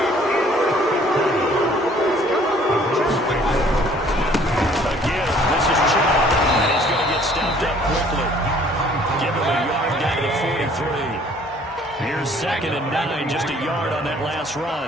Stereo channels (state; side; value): normal; both; correlation 0.57